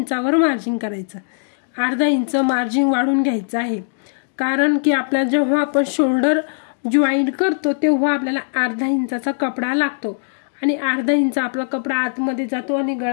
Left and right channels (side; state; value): right; silent; digital silence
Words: मार्जिन करायचं। 1/2 इंच मार्जिन वाढून घ्यायचं आहे कारण की आपल्या जेव्हा आपण शोल्डर जॉईंट करतो तेव्हा आपल्याला 1/2 इंचाचा कपडा लागतो आणि 1/2 इंच आपला कपडा आतमध्ये जातो आणि